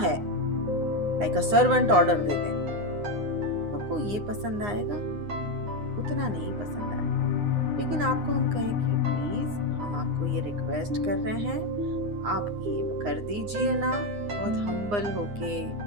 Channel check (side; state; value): left; late; 9.7 ms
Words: लाइक अ सर्वेंट ऑर्डर दे दें, आपको ये पसंद आएगा? उतना नहीं पसंद आएगा। लेकिन आपको हम कहें कि प्लीज हम आपको ये रिक्वेस्ट कर रहे हैं, आप ये कर दीजिए ना, बहुत हम्बल होके,